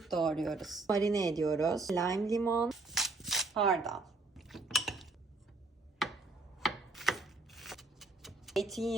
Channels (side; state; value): left; quieter; 3.3 dB